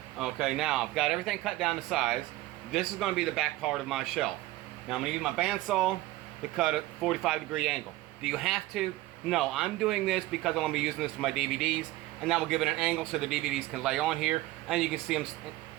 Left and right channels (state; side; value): quieter; left; 17.5 dB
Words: Okay, now I've got everything cut down to size. This is going to be the back part of my shelf. Now I'm going to use my bandsaw to cut a 45-degree angle. Do you have to? No, I'm doing this because I'm going to be using this for my DVDs, and that will give it an angle so the DVDs can lay on here, and you can see them